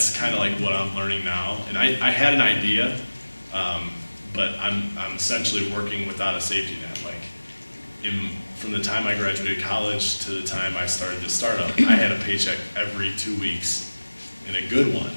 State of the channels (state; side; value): inverted; both; correlation -1.00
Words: kind of like what I'm learning now. And I had an idea, but I'm essentially working without a safety net. Like, from the time I graduated college to the time I started this startup, I had a paycheck every 2 weeks, and a good one,